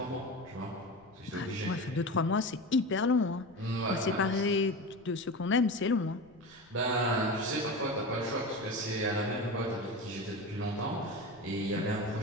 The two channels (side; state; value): left; noise; rumble, 29 dB below the sound